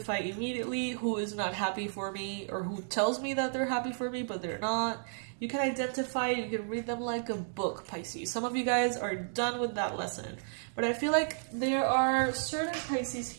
immediately who is not happy for me or who tells me that they're happy for me, but they're not. You can identify, you can read them like a book, Pisces. Some of you guys are done with that lesson. But I feel like there are certain Pisces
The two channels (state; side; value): silent; left; 56 dB below the other